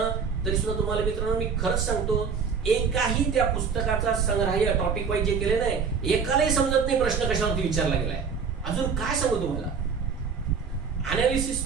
तरी सुद्धा तुम्हाला मित्रांनो मी खरंच सांगतो, एकाही त्या पुस्तकाचा संग्रह टॉपिक वाईज जे केले नाही, एकालाही समजत नाही प्रश्न कशावरती विचारला गेलाय. अजून काय सांगू तुम्हाला,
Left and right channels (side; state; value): left; quieter; 5.9 dB